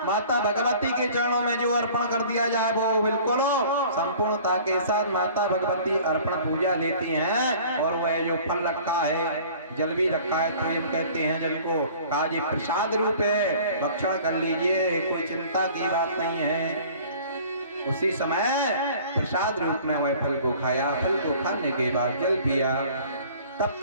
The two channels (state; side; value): inverted; both; correlation -0.48